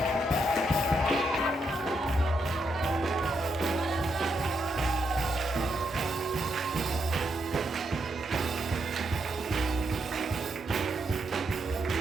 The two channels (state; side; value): normal; both; correlation 0.80